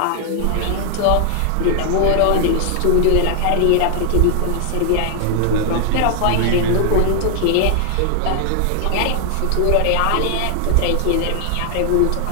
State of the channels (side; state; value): both; different; correlation 0.00